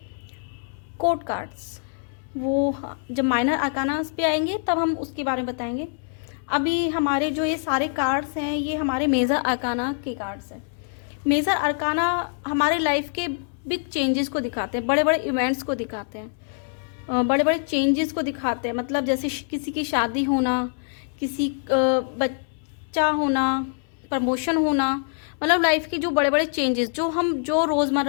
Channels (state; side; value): silent; right; 62 dB below the other